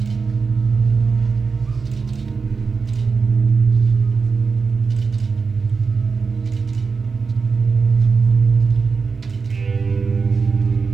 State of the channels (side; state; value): left; quieter; 4.9 dB